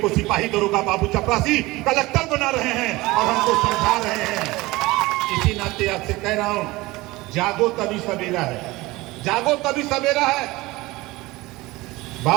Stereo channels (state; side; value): quieter; left; 20.5 dB